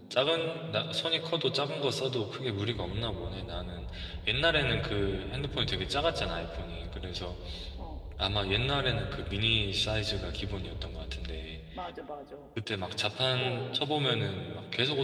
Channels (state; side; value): identical; both; correlation 1.00